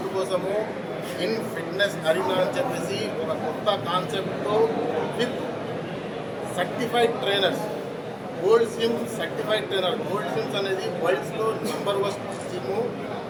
కోసము ఇన్ ఫిట్నెస్ అరీనా అని చెప్పేసి ఒక కొత్త కాన్సెప్ట్తో with certified trainers, gold swim certified trainer. Gold SVIMS అనేది వరల్డ్స్లో నంబర్ 1 జిమ్.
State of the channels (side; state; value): both; identical; correlation 1.00